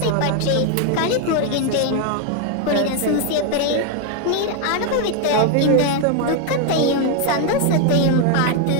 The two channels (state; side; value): different; both; correlation 0.01